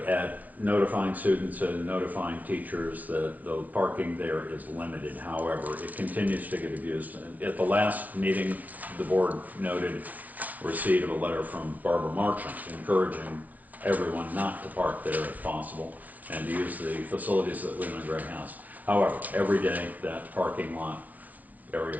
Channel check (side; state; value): left; late; 0.082 ms